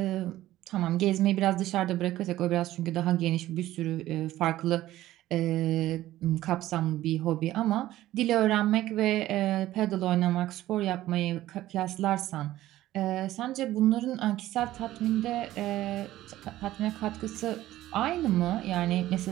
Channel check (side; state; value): left; quieter; 14.8 dB